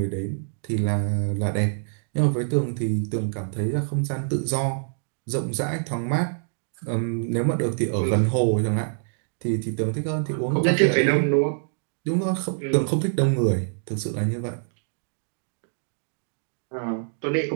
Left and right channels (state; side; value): silent; left; digital silence